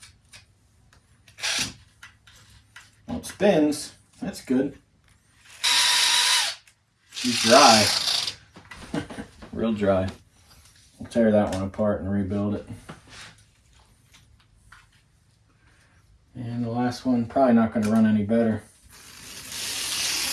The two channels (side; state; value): both; identical; correlation 1.00